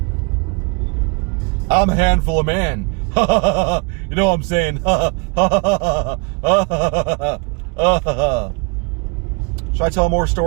I'm a handful of man. You know what I'm saying? Should I tell more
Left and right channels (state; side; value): quieter; left; 31.5 dB